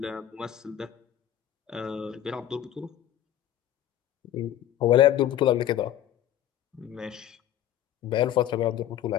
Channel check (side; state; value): right; quieter; 11.6 dB